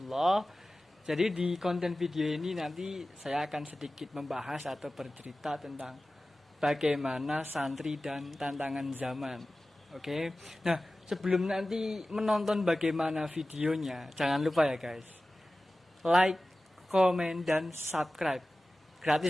Jadi di konten video ini nanti saya akan sedikit membahas atau bercerita tentang bagaimana santri dan tantangan zaman. Oke. Nah, sebelum nanti menonton bagaimana videonya, jangan lupa ya guys. Like, komen dan subscribe.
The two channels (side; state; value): both; normal; correlation 0.96